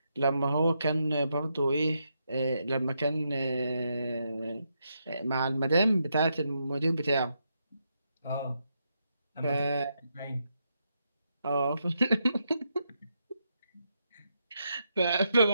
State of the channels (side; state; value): both; inverted; correlation -0.81